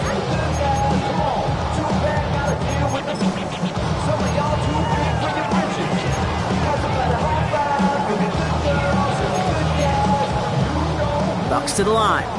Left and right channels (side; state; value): both; identical; correlation 1.00